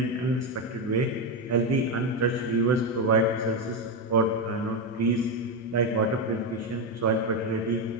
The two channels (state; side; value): normal; both; correlation 0.08